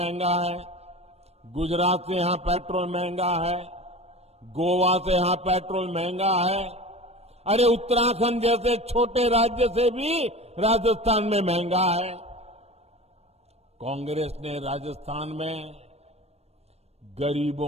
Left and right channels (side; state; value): left; late; 0.31 ms